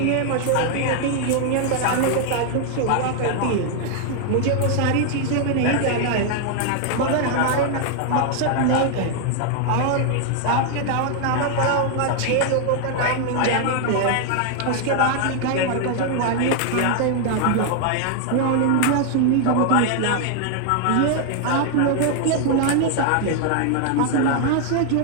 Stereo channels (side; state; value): both; different; correlation 0.00